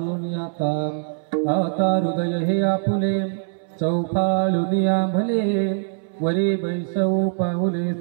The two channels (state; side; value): silent; left; 64 dB below the other